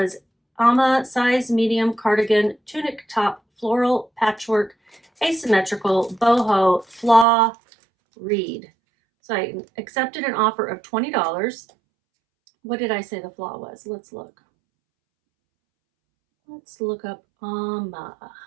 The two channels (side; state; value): left; drops out; at 7.2 s